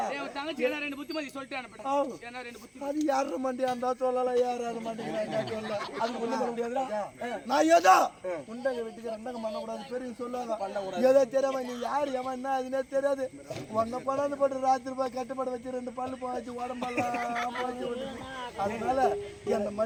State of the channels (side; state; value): both; identical; correlation 1.00